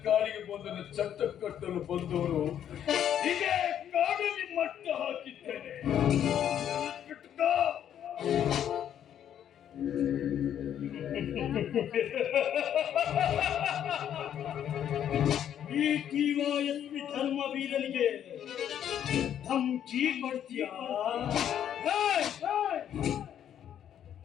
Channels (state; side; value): quieter; right; 9.9 dB